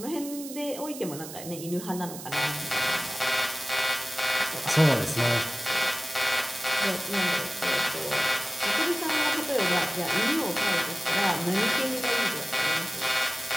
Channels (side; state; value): right; noise; hiss, 12 dB below the sound